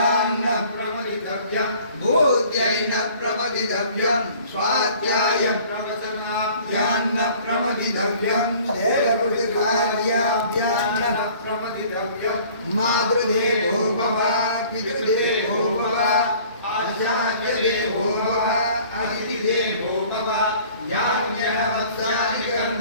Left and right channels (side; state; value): both; inverted; correlation -0.51